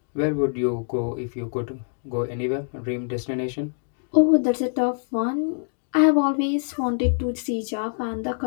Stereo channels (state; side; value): silent; right; 62 dB below the other